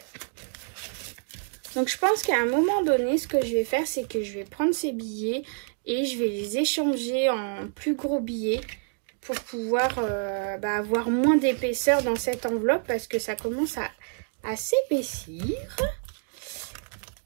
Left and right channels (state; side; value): silent; left; 59 dB below the other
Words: Donc, je pense qu'à un moment donné, ce que je vais faire, c'est que je vais prendre ces billets et je vais les échanger en plus gros billets pour pouvoir avoir moins d'épaisseur dans cette enveloppe parce que ça commence à s'épaissir.